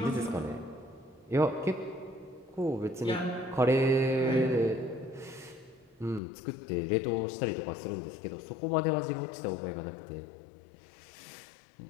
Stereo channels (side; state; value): right; drops out; at 6.2 s